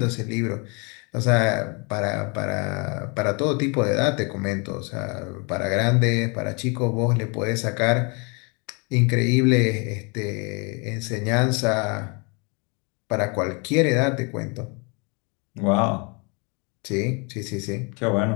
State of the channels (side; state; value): right; quieter; 32.3 dB